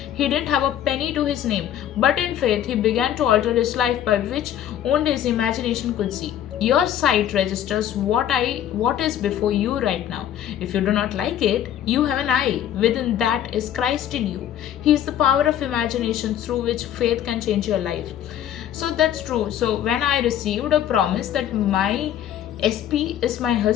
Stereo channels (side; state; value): right; quieter; 10.8 dB